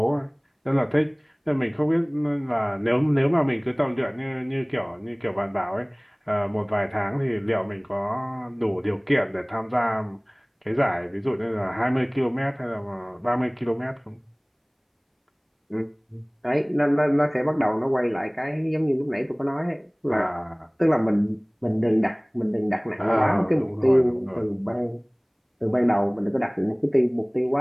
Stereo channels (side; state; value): both; identical; correlation 1.00